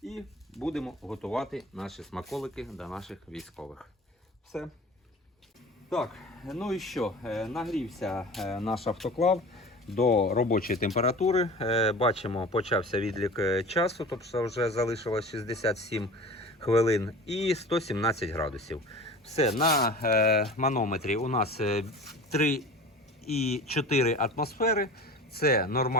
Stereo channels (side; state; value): both; normal; correlation 0.37